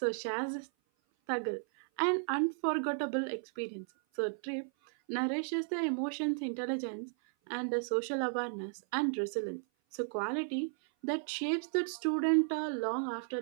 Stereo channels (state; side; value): silent; left; 55 dB below the other